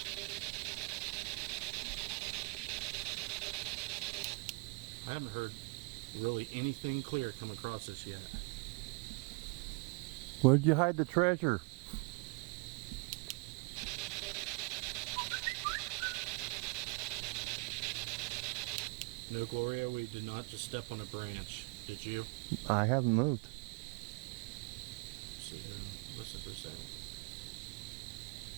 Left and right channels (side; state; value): left; quieter; 32.4 dB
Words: I haven't heard really anything clear come across this yet. Where'd you hide the treasure? No, Gloria, we did not just step on a branch. Did you? I haven't moved. Sit here and listen for a second.